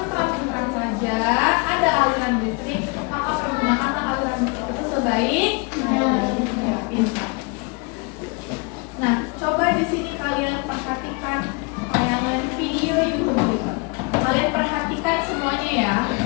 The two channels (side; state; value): right; quieter; 30.8 dB